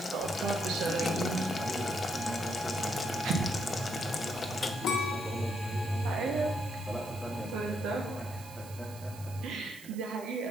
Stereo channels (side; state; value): right; noise; hiss, 17 dB below the sound